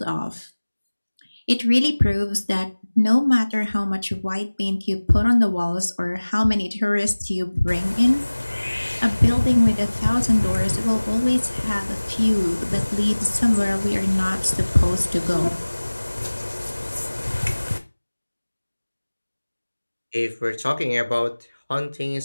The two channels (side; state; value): both; inverted; correlation -1.00